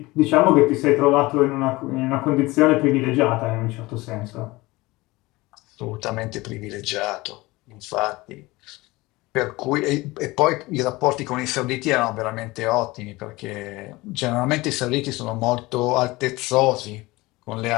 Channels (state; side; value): quieter; right; 21.1 dB